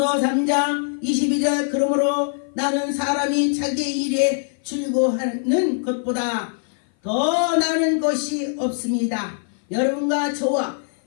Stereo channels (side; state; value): right; silent; 57 dB below the other